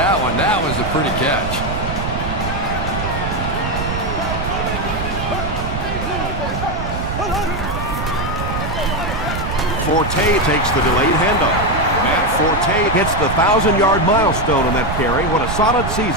one. That was a pretty catch. Forte takes the delayed handoff. Matt Forte hits the 1,000-yard milestone on that carry. What a solid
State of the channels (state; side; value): noise; right; rumble, 4 dB below the sound